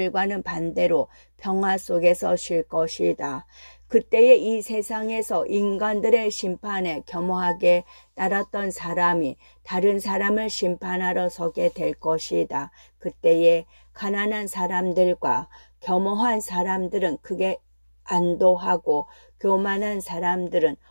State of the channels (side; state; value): both; inverted; correlation -1.00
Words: 반대로 평화 속에서 쉴 것이다. 그때의 이 세상에서 인간들의 심판에 겸허하게 따랐던 사람이 다른 사람을 심판하러 서게 될 것이다. 그때의 가난한 사람들과 겸허한 사람들은 크게 안도하고 교만한 사람들은